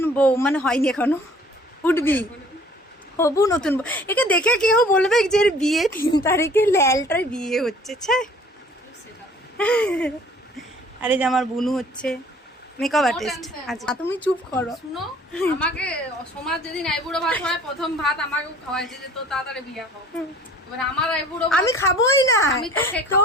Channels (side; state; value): both; normal; correlation 0.52